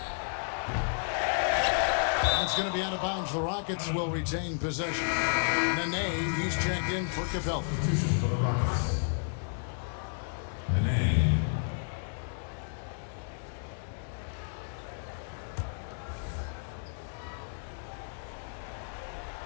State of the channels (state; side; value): silent; right; 57 dB below the other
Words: It's going to be out of bounds. The Rockets will retain possession. Nene, he's checked in for Capella. For the Rockets. Nene.